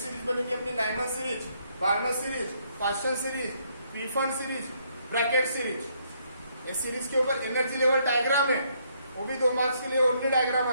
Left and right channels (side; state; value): both; inverted; correlation -0.71